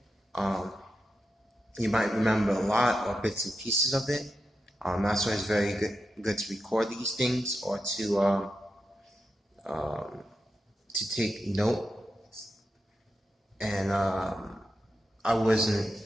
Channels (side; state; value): both; normal; correlation 0.88